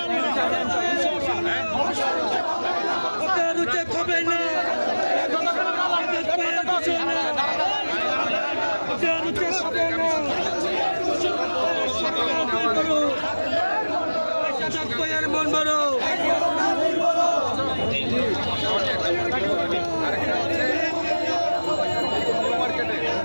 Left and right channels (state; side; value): inverted; both; correlation -1.00